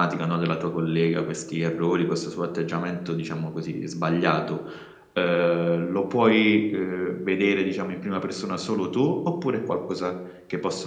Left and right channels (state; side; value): identical; both; correlation 1.00